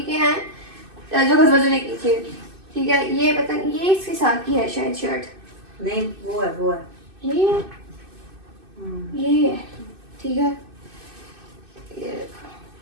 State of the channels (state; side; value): late; left; 2.6 ms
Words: के हैं जो घसबजो ने की थी। ठीक है, ये पता नहीं ये इसके साथ की है शायद शर्ट। नहीं वो है ये है। ठीक है,